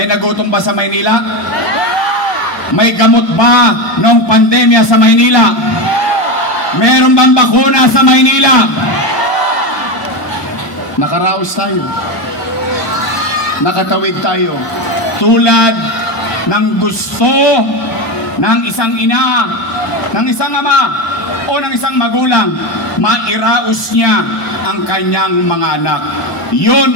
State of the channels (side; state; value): right; late; 1.0 ms